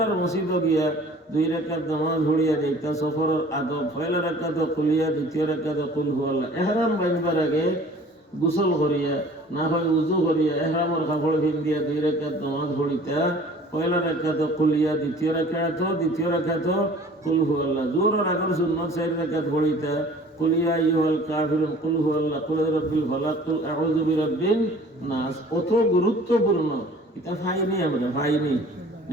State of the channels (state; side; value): normal; both; correlation 0.49